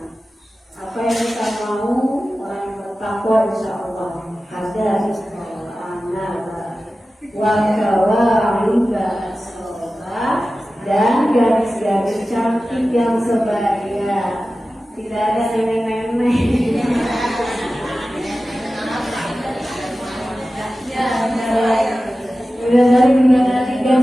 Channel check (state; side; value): normal; both; correlation 0.95